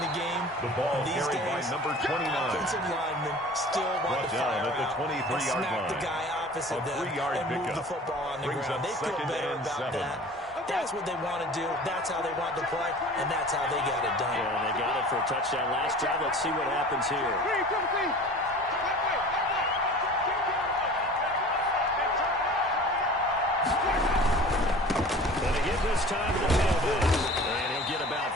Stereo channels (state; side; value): normal; both; correlation 0.42